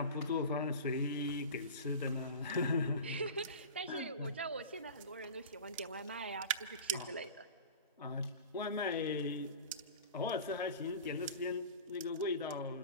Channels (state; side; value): inverted; both; correlation -0.34